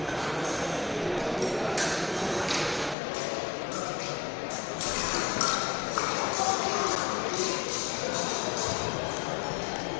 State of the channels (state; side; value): drops out; right; at 3.0 s